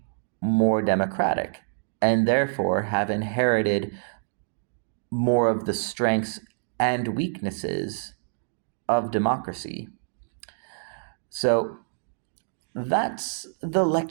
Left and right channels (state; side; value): silent; left; digital silence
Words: more democratic, and therefore have inherited more of the strengths and weaknesses of democracy. So that's the